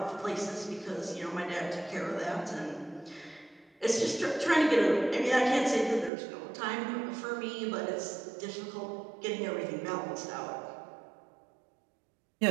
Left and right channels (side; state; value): left; drops out; at 6.1 s